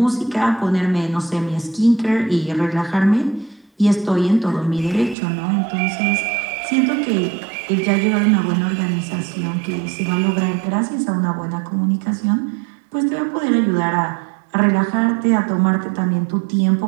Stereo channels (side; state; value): left; drops out; at 5.2 s